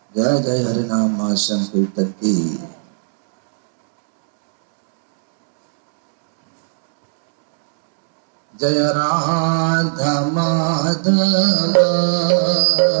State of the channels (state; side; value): silent; left; digital silence